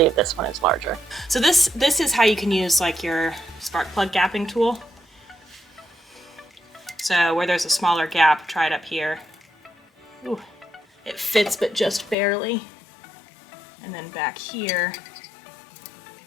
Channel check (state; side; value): drops out; right; at 12.2 s